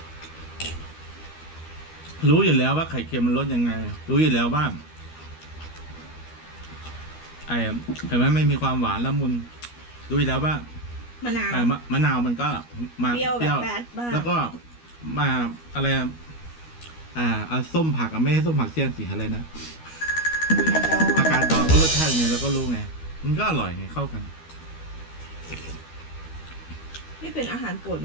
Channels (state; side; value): late; right; 13 ms